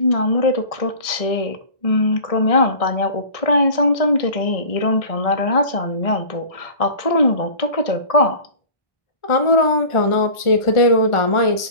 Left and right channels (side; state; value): right; late; 1.6 ms